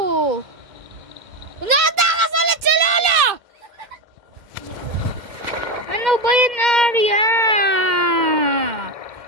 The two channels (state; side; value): late; left; 2.1 ms